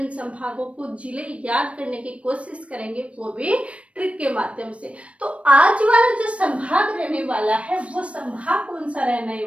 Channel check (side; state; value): left; late; 0.063 ms